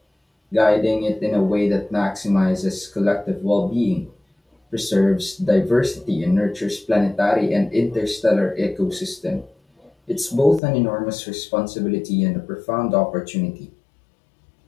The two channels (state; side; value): drops out; right; at 10.6 s